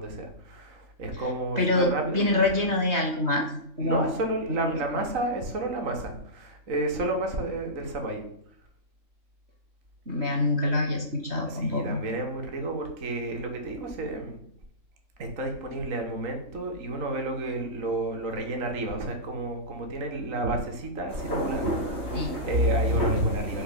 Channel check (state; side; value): late; left; 3.2 ms